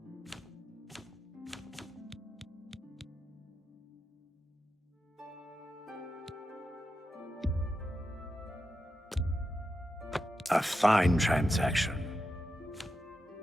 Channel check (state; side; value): normal; both; correlation 0.88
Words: A fine transaction.